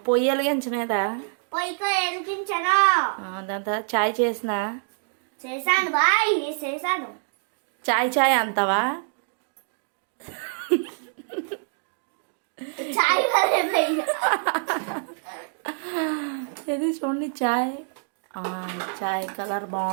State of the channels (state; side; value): silent; left; 61 dB below the other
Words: పొయ్యి వెలిగించలేదా? పొయ్యితో వెలిగించాను. దాని తర్వాత చాయ్ చేసినా? చేశాను బాయ్, చేశాను. చాయ్ అంతావా? చాయ్ ఇది చూడండి, చాయ్ కలర్